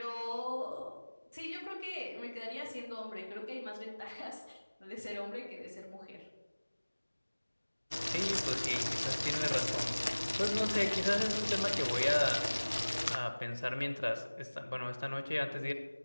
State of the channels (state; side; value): inverted; both; correlation -1.00